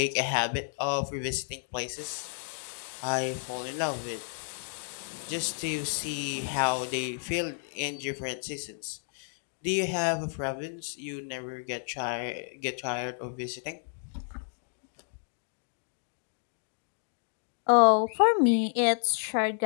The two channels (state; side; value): silent; right; digital silence